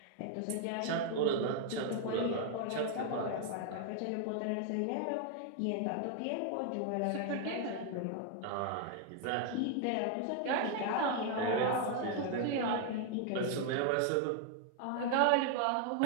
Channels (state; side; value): different; both; correlation 0.00